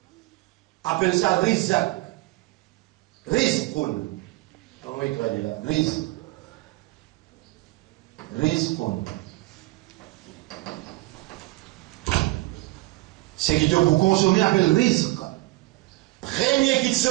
appelle ça rizq. Rizqun. Comment il traduit là? Rizq. Rizqun. Ce qui te pour consommer appelle rizq. Première petite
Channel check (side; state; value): left; quieter; 20.6 dB